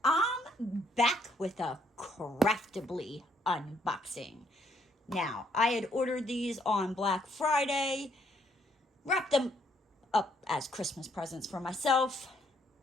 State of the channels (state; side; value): normal; both; correlation 0.70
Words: I'm back with a Craftibly unboxing. Now, I had ordered these on Black Friday, wrapped them up as Christmas presents for myself,